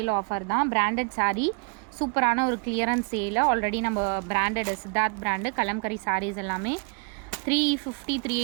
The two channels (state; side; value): quieter; left; 37.2 dB